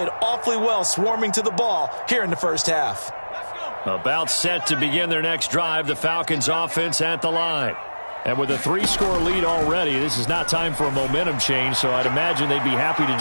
awfully well swarming to the ball here in the first half. About set to begin their next drive, the Falcons offense at the line. And with a 3-score lead already, this is not time for a momentum change, so I'd imagine they'd be happy to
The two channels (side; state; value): both; inverted; correlation -1.00